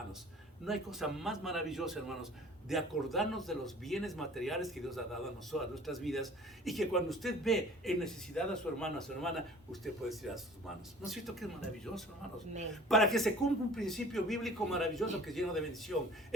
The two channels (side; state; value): both; normal; correlation 0.46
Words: No hay cosa más maravillosa, hermanos, de acordarnos de los bienes materiales que Dios ha dado a nosotros, a nuestras vidas, y que cuando usted ve en necesidad a su hermano, a su hermana, usted puede tirar sus manos. ¿No es cierto que es maravilloso, hermanos? Para que se cumpla un principio bíblico maravilloso que es lleno de bendición.